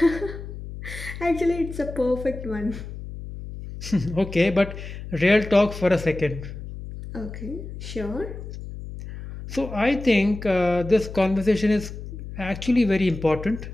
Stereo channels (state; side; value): noise; left; hum, 10 dB below the sound